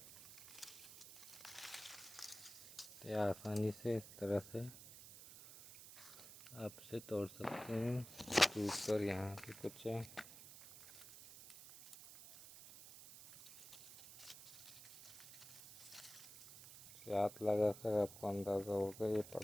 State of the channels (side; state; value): right; noise; hiss, 15 dB below the sound